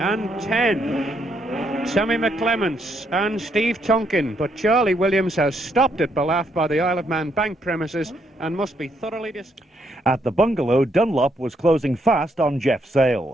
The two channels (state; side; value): normal; both; correlation 0.75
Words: 10. Sammy McClements and Steve Tonkin, but Charlie Williams has stopped at Ballaugh by the Isle of Man bank premises and must be thoroughly At the bungalow, Dunlop was closing fast on Jeff